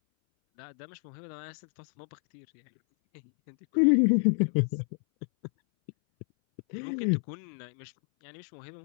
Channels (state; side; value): silent; right; 58 dB below the other